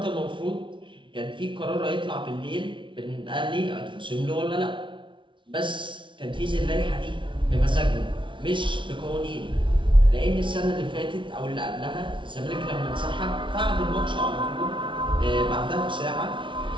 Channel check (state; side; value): late; left; 0.24 ms